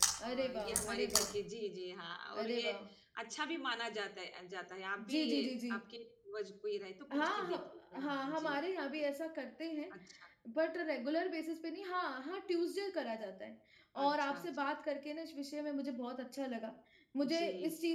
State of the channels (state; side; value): identical; both; correlation 1.00